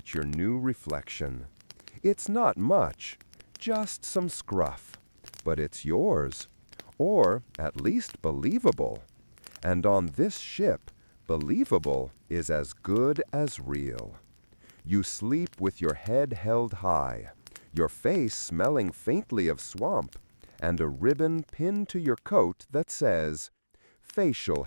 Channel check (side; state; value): both; inverted; correlation -1.00